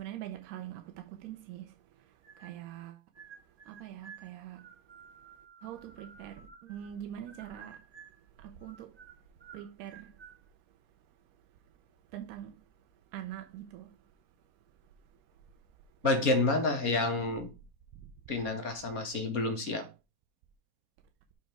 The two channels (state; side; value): late; left; 4.3 ms